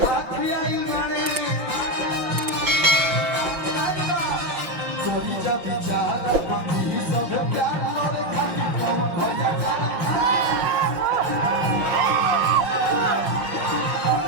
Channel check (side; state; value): left; late; 5.9 ms